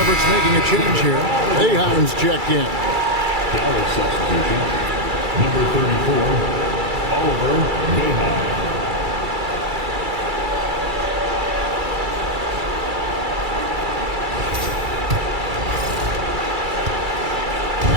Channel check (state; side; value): late; left; 2.3 ms